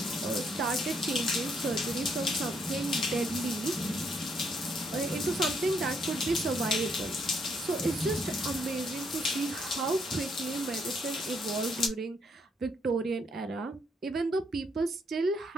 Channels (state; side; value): normal; both; correlation 0.72